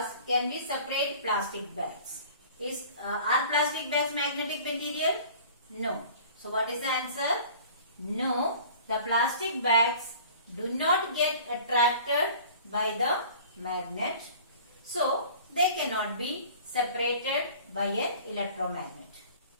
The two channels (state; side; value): inverted; both; correlation -0.46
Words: can we separate plastic bags? Are plastic bags magnetic material? No. So what is the answer? No, the plastic bags do not get attracted by the magnet. So they cannot be separated by an electromagnet.